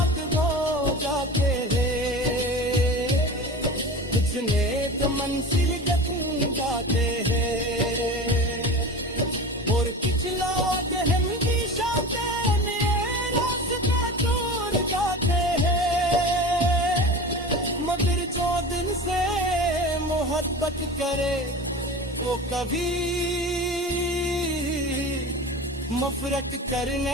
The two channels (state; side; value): normal; both; correlation 0.32